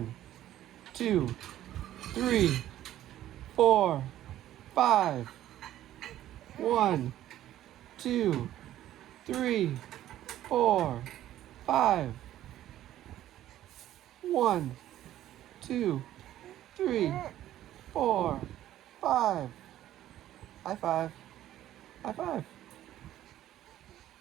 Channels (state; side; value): quieter; left; 13.0 dB